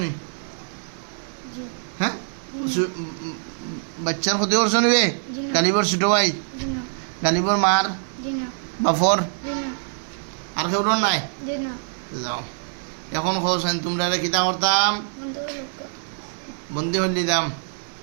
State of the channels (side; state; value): left; silent; 63 dB below the other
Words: নি হ্যাঁ বাচ্চার ক্ষতি করছো নি বে গালিবর ছোট ভাই গালিবর মার বাফর আর কেউ নাই যাও এখন খোঁজেন তোমরা কিতা করতাম বন্দি হলি দাম